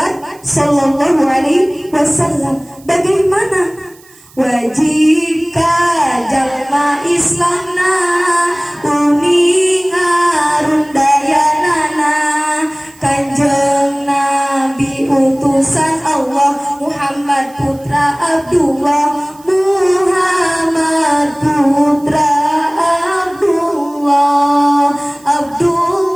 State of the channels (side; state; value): right; noise; hiss, 26 dB below the sound